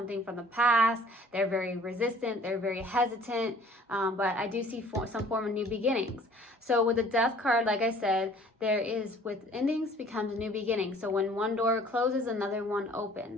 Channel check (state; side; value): normal; both; correlation 0.53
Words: from the past. They're very resistant. They're very hesitant. But I do see some form of new beginnings. So with the Death card, like I said, there is, with endings becomes new beginnings. So when one door closes, another one